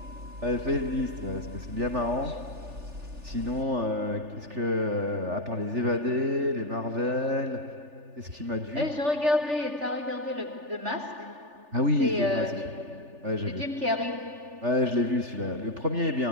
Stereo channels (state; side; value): late; left; 3.4 ms